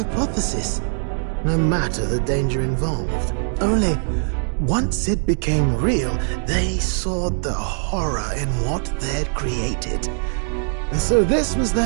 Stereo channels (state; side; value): silent; left; 62 dB below the other